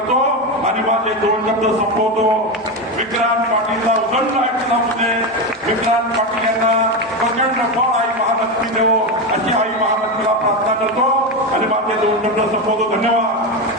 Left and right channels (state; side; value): normal; both; correlation 0.15